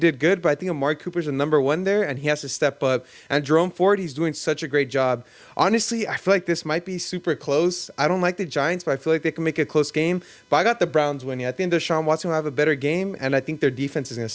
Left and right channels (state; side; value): identical; both; correlation 1.00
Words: good, but I think Amari Cooper's the number 1 there, and he has to step up. And Jerome Ford, he's doing such a great job. Honestly, I feel like this might be super close. I don't like the Giants, but I feel like they can make it a close game. But I got the Browns winning. I think Deshaun Watson will have a better game, and I think their defense is going to